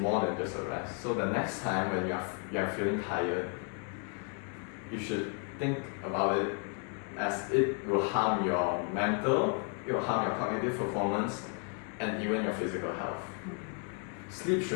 than just a rest. So the next time when you are feeling tired, you should think about it as it will harm your mental, it will harm your cognitive performance, and even your physical health. Sleep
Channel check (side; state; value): right; quieter; 38.2 dB